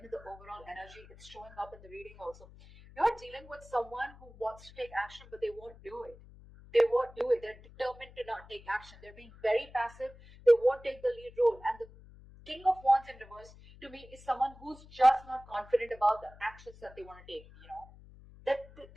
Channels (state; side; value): noise; left; hum, 21 dB below the sound